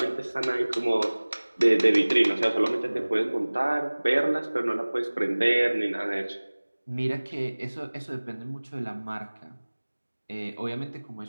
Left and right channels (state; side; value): inverted; both; correlation -1.00